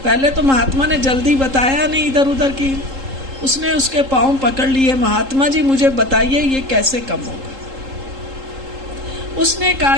पहले तो महात्मा ने जल्दी बताया नहीं इधर उधर की, उसने उसके पांव पकड़ लिए, महात्मा जी मुझे बताइए ये कैसे कम होगा? उसने कहा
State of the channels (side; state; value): left; late; 3.8 ms